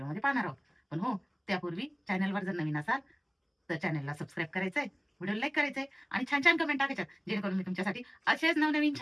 पाहणार आहोत. पण हो, त्यापूर्वी चॅनलवर जर नवीन असाल तर चॅनलला सबस्क्राईब करायचंय, व्हिडिओ लाईक करायचंय आणि छान छान कमेंट टाकायच्यात, जेणेकरून मी तुमच्यासाठी असेच नवनवीन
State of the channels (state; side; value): identical; both; correlation 1.00